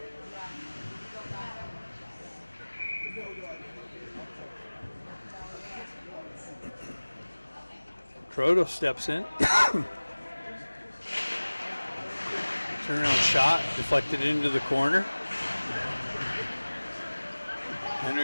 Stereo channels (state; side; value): inverted; both; correlation -1.00